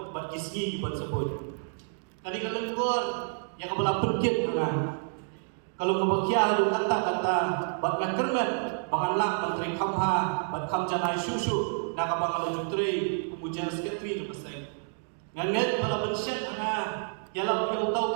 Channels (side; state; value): left; silent; digital silence